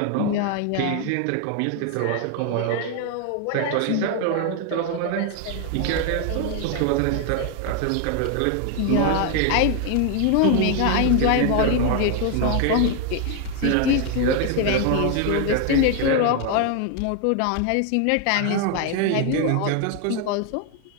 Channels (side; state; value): both; different; correlation 0.01